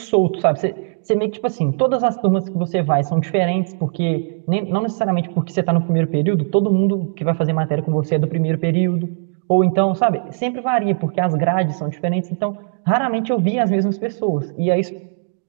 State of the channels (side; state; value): left; silent; 66 dB below the other